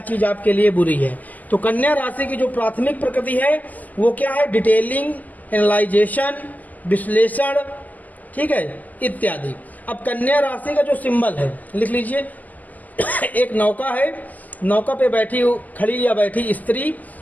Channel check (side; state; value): right; late; 0.080 ms